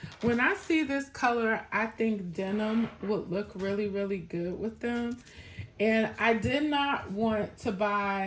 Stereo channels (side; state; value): both; identical; correlation 1.00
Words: When I see this color, I think denim would look really, really good with them. And I did not want to